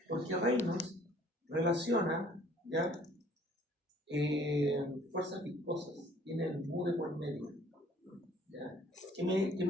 Porque Reynolds relaciona, ¿ya? Fuerzas viscosas, tiene el mu de por medio. ¿Ya? ¿Qué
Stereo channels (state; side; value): normal; both; correlation 0.57